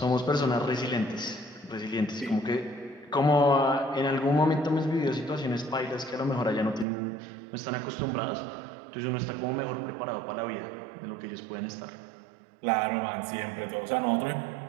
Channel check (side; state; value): left; drops out; at 6.9 s